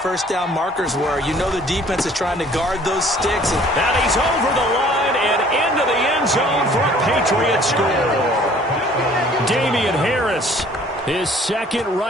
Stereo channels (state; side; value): normal; both; correlation 0.54